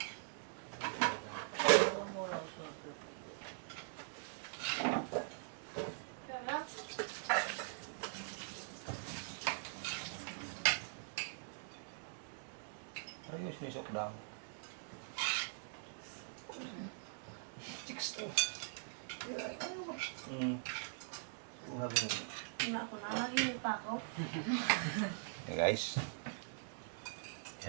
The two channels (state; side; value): silent; left; digital silence